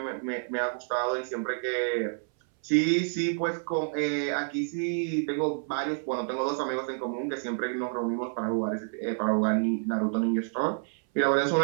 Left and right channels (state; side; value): silent; left; 59 dB below the other